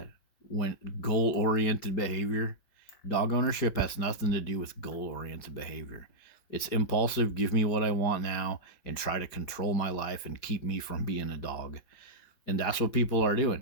when goal-oriented behavior. Dog ownership has nothing to do with goal-oriented behavior. It's impulsive, give me what I want now, and try to control my life and keep me from being a dog. And that's what people are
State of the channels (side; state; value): right; late; 4.9 ms